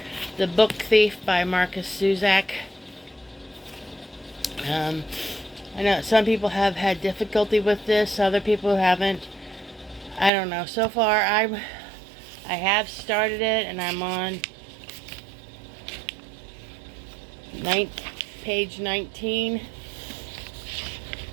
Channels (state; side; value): drops out; left; at 10.3 s